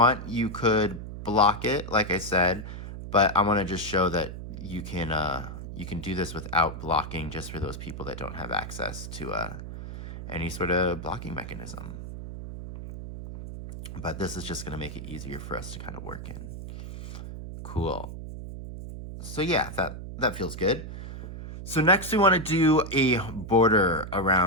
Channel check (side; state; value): right; noise; hum, 9 dB below the sound